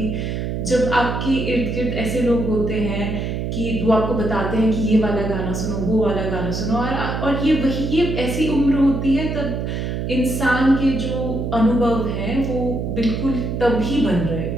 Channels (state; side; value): noise; right; hum, 3 dB below the sound